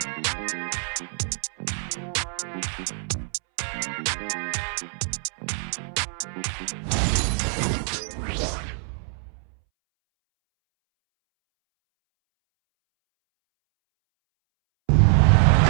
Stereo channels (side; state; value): left; silent; 62 dB below the other